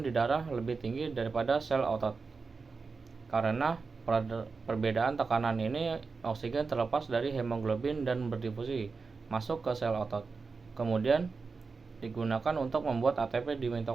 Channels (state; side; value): quieter; left; 4.6 dB